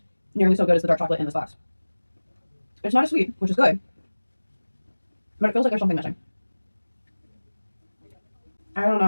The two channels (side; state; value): both; inverted; correlation -1.00